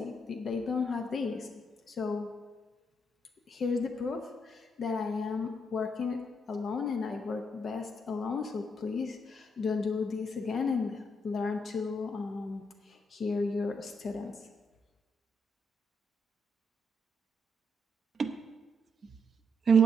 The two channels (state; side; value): normal; both; correlation 0.76